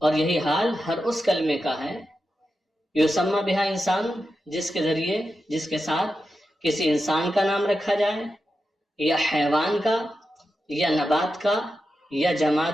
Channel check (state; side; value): normal; both; correlation 0.90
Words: یہی حال ہر اس کلمے کا ہے، یسمى بہا انسان، جس کے ذریعے، جس کے ساتھ کسی انسان کا نام رکھا جائے، یا حیوان کا، یا نبات کا، یا